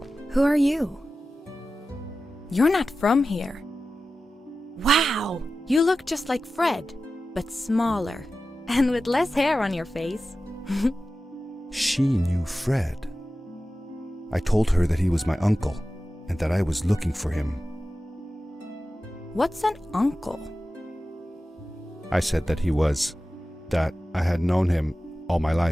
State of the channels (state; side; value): normal; both; correlation 0.94